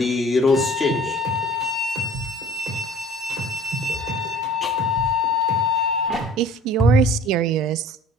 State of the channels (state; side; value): normal; both; correlation 0.48